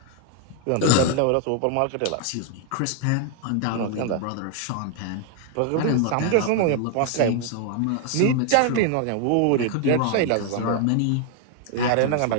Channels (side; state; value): both; different; correlation 0.00